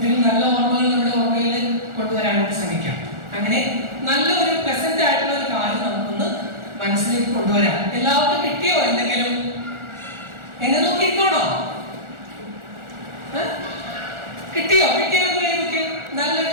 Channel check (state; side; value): late; left; 1.4 ms